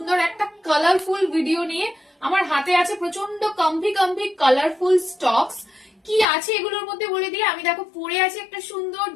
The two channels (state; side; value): drops out; right; at 6.2 s